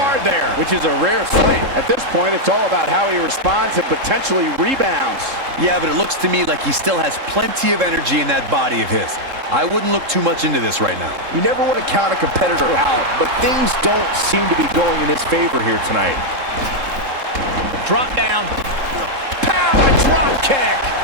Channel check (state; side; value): late; left; 3.7 ms